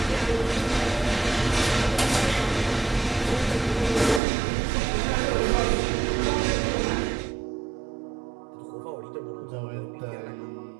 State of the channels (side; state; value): left; drops out; at 4.2 s